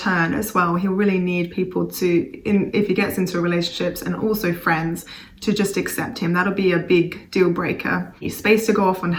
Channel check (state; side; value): identical; both; correlation 1.00